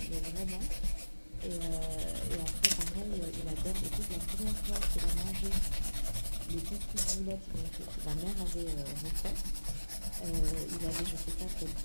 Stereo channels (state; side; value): inverted; both; correlation -1.00